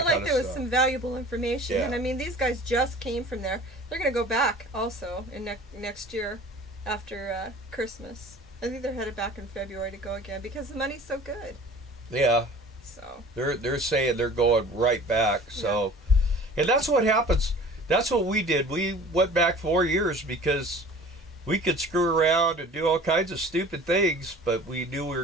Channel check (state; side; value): normal; both; correlation 0.44